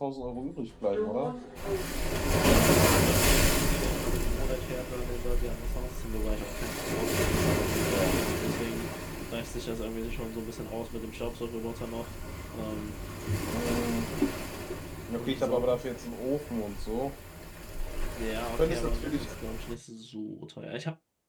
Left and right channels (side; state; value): both; identical; correlation 1.00